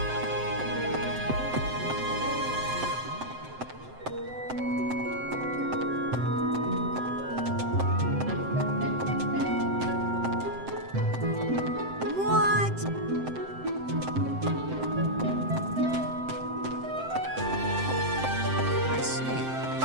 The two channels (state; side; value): late; left; 7.7 ms